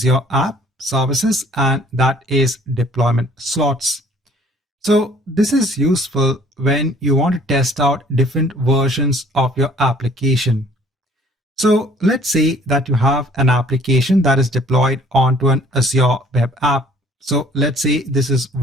App Services, and that is deployment slots. So this is useful when you want to test out different versions of your application. So let's say that you have an application that is deployed onto an Azure Web App So let's say this is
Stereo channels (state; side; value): normal; both; correlation 0.56